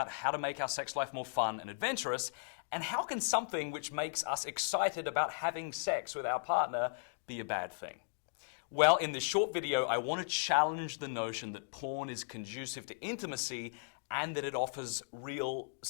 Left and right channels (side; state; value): right; silent; digital silence